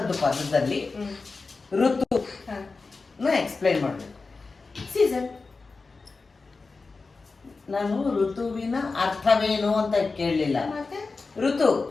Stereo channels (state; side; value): quieter; right; 4.0 dB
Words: ಪದದಲ್ಲಿ ಋತು ಎಕ್ಸ್ಪ್ಲೈನ್ ಮಾಡಬೇಕು. ಸೀಸನ್. ನಾನು ಋತುವಿನ ಅರ್ಥವೇನು ಅಂತ ಕೇಳಲಿಲ್ಲ. ಮತ್ತೆ ಋತು,